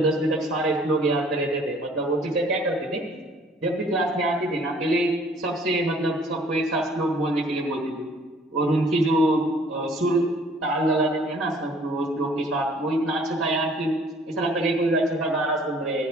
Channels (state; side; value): normal; both; correlation 0.56